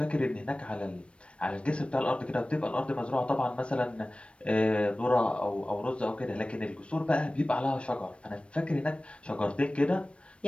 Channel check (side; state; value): right; late; 0.060 ms